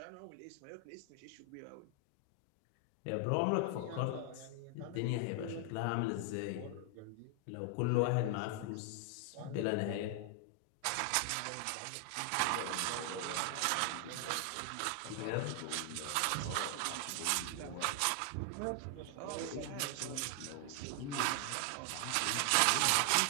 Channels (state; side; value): different; both; correlation 0.00